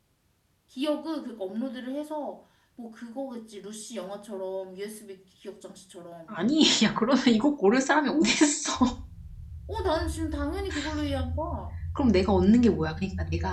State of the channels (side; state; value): both; identical; correlation 1.00